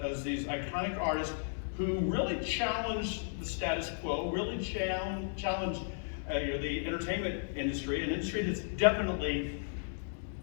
these iconic artists who really challenged the status quo, really challenged the entertainment industry, an industry that's definitely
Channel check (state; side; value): silent; right; digital silence